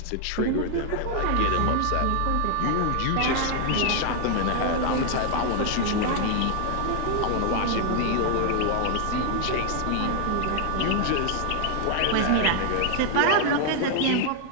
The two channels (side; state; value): both; different; correlation 0.00